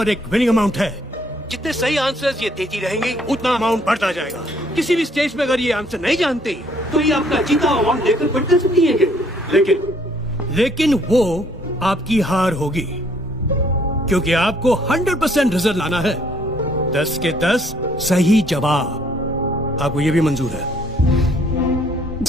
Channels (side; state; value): both; normal; correlation 0.64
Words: एक विनिंग अमाउंट है। जितने सही आंसर्स ये देती रहेंगी उतना अमाउंट बढ़ता जाएगा। किसी भी स्टेज पे अगर ये आंसर नहीं जानती तो ये आपका जीता अमाउंट लेकर बढ़ कर सकती है। लेकिन वो आपकी हार होगी, क्योंकि आपको 100% रिजल्ट लाना है। 10 के 10 सही जवाब। आपको ये भी मंजूर है?